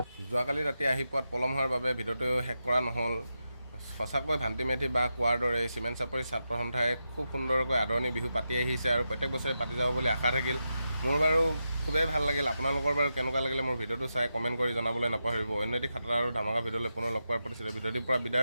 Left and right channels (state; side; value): inverted; both; correlation -0.88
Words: যোৱাকালি ৰাতি আহি পোৱাত পলম হোৱাৰ বাবে ভিডিঅ'টো শেষ কৰা নহ'ল সঁচাকৈ ভান্তি মেধি বা কোৱাৰ দৰে চিমেণ্ট চাপৰি ছাত্ৰ সন্থাই খুব সুন্দৰকৈ আদৰণি বিহু পাতি আহিছে আৰু প্ৰত্যেক বছৰে পাতি যাব বুলি আশা থাকিল মোৰ বাৰু খুবেই ভাল লাগিল আপোনালোকৰ বাৰু কেনেকুৱা লাগিলে মোৰ ভিডিঅ'টো চাই কমেণ্ট কৰি জনাবলৈ নাপাহৰিব অন্য এটি খাতৰা আৰু ধামাকা ভিডিঅ'লৈ পুনৰ লগ পোৱাৰ প্ৰতিশ্ৰুতি ভিডিঅ'টিৰ পৰা